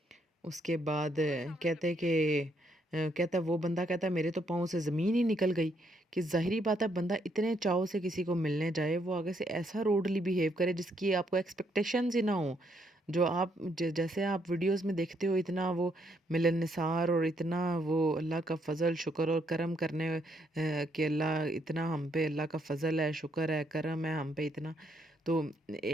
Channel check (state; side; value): normal; both; correlation 0.73